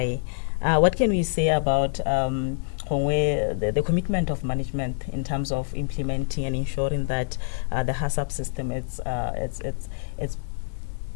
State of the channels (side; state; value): right; silent; 59 dB below the other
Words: What can we say about the commitment of management in terms of implementing and ensuring that the HACCP system